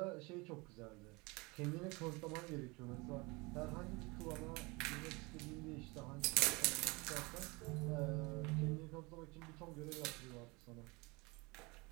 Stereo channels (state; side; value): quieter; left; 26.1 dB